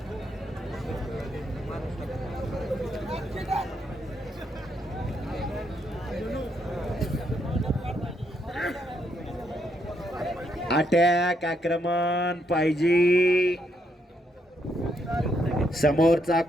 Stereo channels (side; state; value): both; normal; correlation 0.76